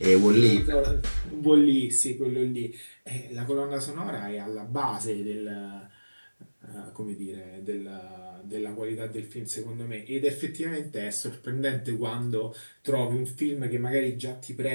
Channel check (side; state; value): both; inverted; correlation -1.00